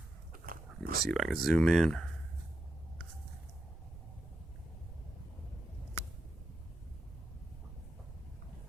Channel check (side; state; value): right; noise; rumble, 14 dB below the sound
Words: Let me see if I can zoom in.